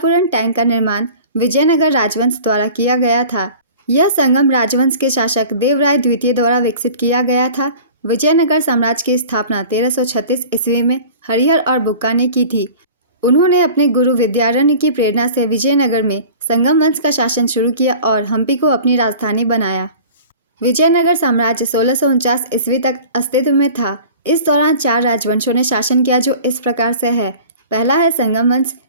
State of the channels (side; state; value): both; inverted; correlation -0.42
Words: टैंक का निर्माण विजयनगर राजवंश द्वारा किया गया था। यह संगम राजवंश के शासक देवराय द्वितीय द्वारा विकसित किया गया था। विजयनगर साम्राज्य की स्थापना 1336 ईस्वी में हरिहर और बुक्का ने की थी। उन्होंने अपने गुरु विद्यारण्य की प्रेरणा से विजयनगर में संगम वंश का शासन शुरू किया और हम्पी को अपनी राजधानी बनाया। विजयनगर साम्राज्य 1649 ईस्वी तक अस्तित्व में था। इस दौरान 4 राजवंशों ने शासन किया जो इस प्रकार से है। पहला है संगम वंश।